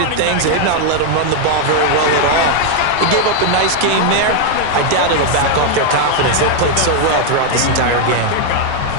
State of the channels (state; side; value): different; both; correlation 0.00